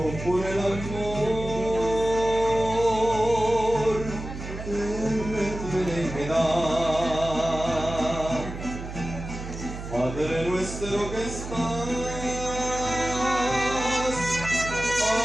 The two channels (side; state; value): right; noise; hum, 9 dB below the sound